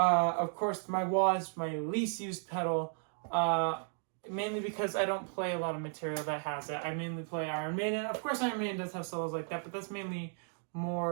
course, my wah is my least used pedal. Mainly because I don't play a lot of material that has it. I mainly play Iron Maiden. Of course, Iron Maiden does have solos like that, but that's mainly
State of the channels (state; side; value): silent; left; 55 dB below the other